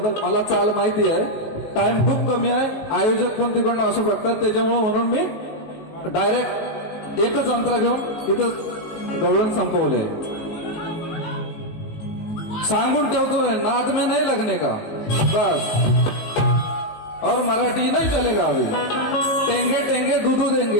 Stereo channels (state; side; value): late; right; 18 ms